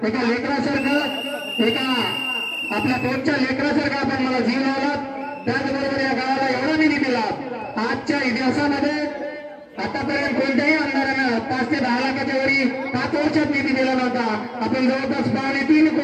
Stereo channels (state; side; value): identical; both; correlation 1.00